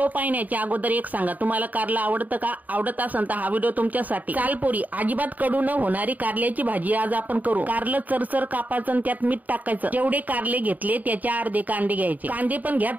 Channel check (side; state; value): left; late; 0.079 ms